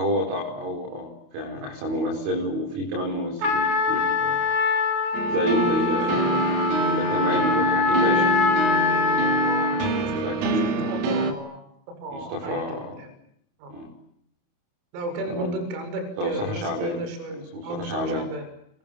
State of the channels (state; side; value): late; left; 28 ms